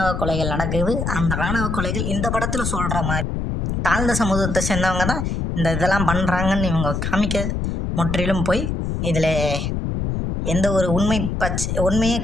கொலைகள் நடக்குது. அந்த ஆணவ கொலைகள் இந்த படத்தில் சொல்கிற மாதிரி தாழ்ந்த சமூகத்தை சேர்ந்தவங்க தான் இந்த இதெல்லாம் பண்ணுறாங்கன்னு இவங்க காமிக்க முற்றிலும் போய் இதில் எந்த ஒரு உண்மையே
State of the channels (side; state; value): left; noise; rumble, 2 dB below the sound